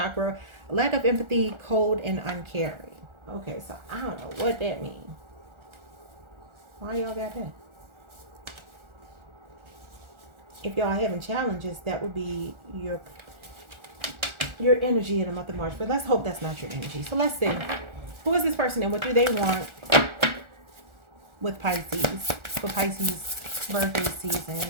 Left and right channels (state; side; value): late; left; 1.4 ms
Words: lack of empathy, cold, and uncaring. Okay, so I don't know what that means. Why y'all got that? If y'all having challenges, that would be your energy in the month of March. But let's hope that's not your energy. So let's see. Who is this person and what do they want with Pisces? For Pisces birthday season.